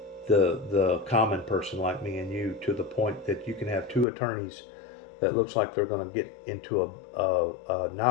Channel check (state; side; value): drops out; right; at 4.0 s